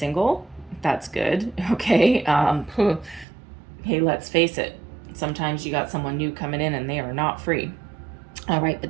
That's good. Okay. Hey, let's face it. Sometimes you got someone new coming in, and they are not free. All right,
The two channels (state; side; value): drops out; left; at 3.2 s